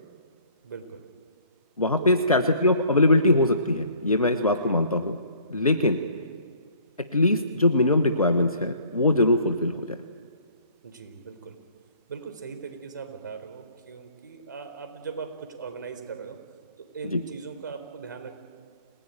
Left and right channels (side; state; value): both; inverted; correlation -0.55